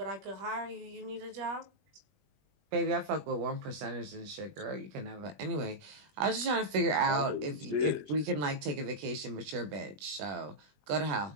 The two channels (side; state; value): left; late; 20 ms